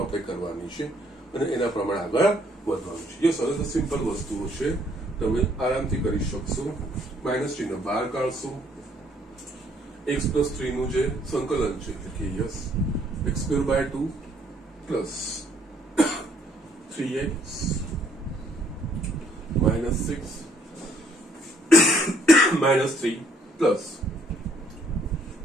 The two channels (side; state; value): both; normal; correlation 0.65